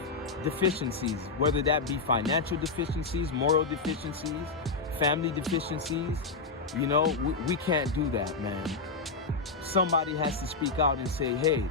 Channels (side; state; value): right; quieter; 4.1 dB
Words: deficiencies, whether that be financial deficiencies, moral deficiencies, family deficiencies. You know, we can't do that, man. Somebody has to speak out and say, hey,